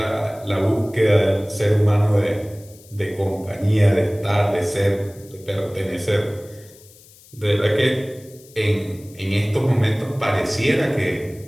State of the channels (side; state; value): left; noise; hiss, 24 dB below the sound